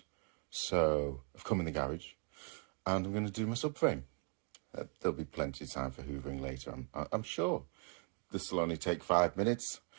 So I've come in the garage and I'm going to do my subframe. There'll be plenty of time for hoovering later, I'm sure. This will only take 5 minutes.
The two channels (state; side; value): quieter; left; 38.4 dB